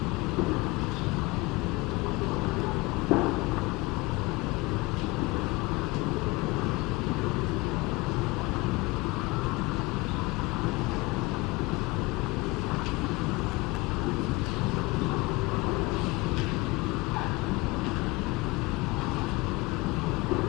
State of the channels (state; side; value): quieter; right; 22.6 dB